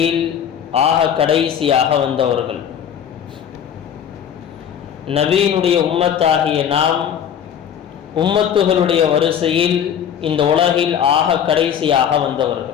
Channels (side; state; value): right; quieter; 8.8 dB